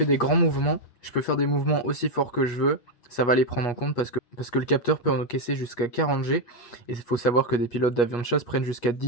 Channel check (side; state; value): right; late; 8.4 ms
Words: des grands mouvements, je peux faire des mouvements aussi forts que je veux, ça va les prendre en compte parce que le capteur peut encaisser jusqu'à 40 G, et il faut savoir que des pilotes d'avions de chasse prennent jusqu'à